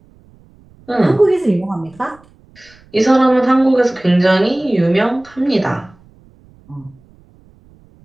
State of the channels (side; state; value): right; noise; rumble, 29 dB below the sound